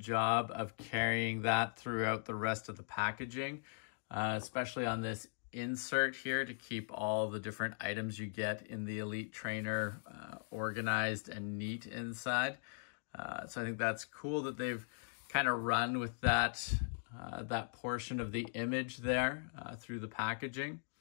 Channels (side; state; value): right; silent; digital silence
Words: of carrying that throughout the rest of the packaging, especially on this insert here to keep all the different items you get in the Elite Trainer organized and neat inside. So I think that's cool that they've kind of run with that portion of the image there through the packaging.